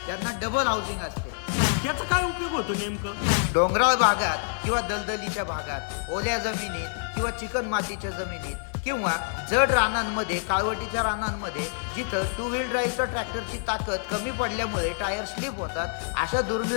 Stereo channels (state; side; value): silent; right; digital silence